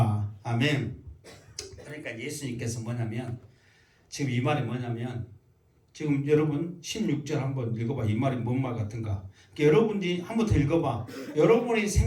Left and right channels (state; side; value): identical; both; correlation 1.00